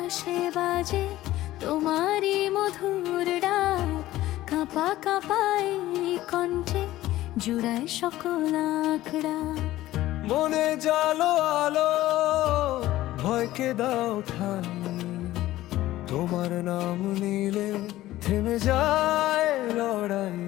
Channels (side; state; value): right; quieter; 15.6 dB